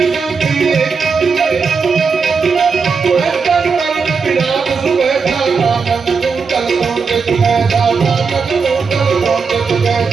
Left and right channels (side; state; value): left; quieter; 5.2 dB